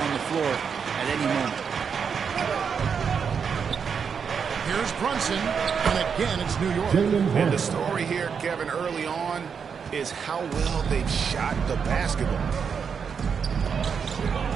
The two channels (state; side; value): quieter; left; 6.5 dB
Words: the floor at any moment. Here's Brunson, and again it's New York. And the story here, Kevin, early on is how well they've shot the basketball.